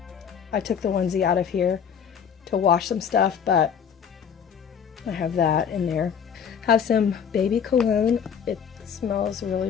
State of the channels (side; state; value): right; quieter; 7.5 dB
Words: I took the onesie out of here to wash some stuff, but I have that in there. Have some baby cologne. It smells really,